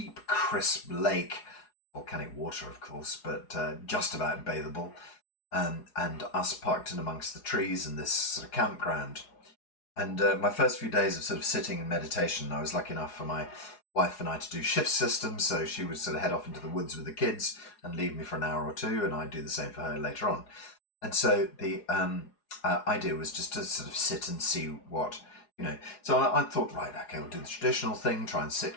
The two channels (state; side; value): late; right; 4.9 ms